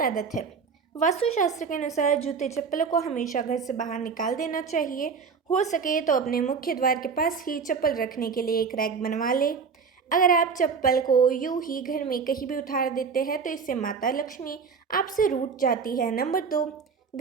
आदत है। वास्तुशास्त्र के अनुसार जूते चप्पलों को हमेशा घर से बाहर निकाल देना चाहिए। हो सके तो अपने मुख्य द्वार के पास ही चप्पल रखने के लिए एक रैक बनवा लें। अगर आप चप्पल को यूं ही घर में कहीं भी उतार देते हैं तो इससे माता लक्ष्मी आपसे रूठ जाती है। नंबर 2,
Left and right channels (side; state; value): left; quieter; 5.6 dB